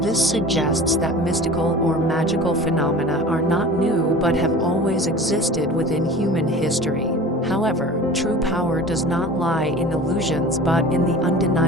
suggests that mystical or magical phenomena are not new but have always existed within human history. However, true power does not lie in illusions but in the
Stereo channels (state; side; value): normal; both; correlation 0.39